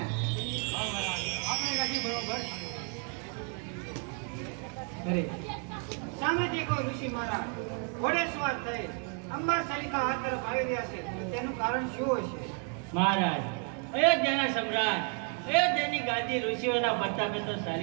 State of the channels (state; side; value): quieter; left; 39.6 dB